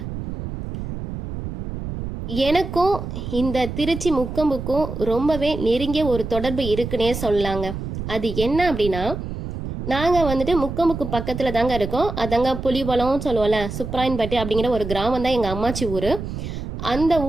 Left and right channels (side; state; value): right; noise; rumble, 7 dB below the sound